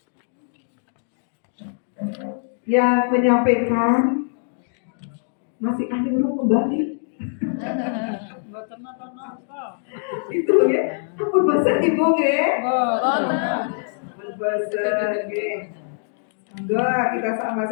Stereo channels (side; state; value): right; silent; digital silence